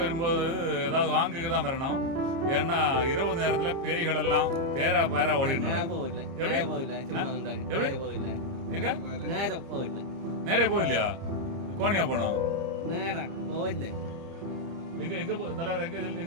வரும்போது ஏதாவது வாங்குக்கு தான் வரணும். ஏன்னா இரவு நேரத்துல பேய்கள் எல்லாம் பேரா பேரா ஓடிடணும். எங்க நேரே போகலையா? கோணியா போனோம். எங்க எங்க தலைவர் எங்க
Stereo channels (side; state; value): left; late; 30 ms